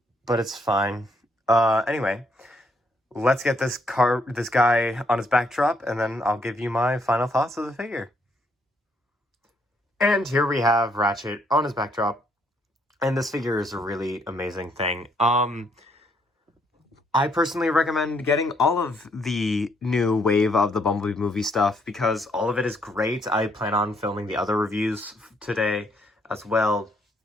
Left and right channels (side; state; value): both; normal; correlation 0.71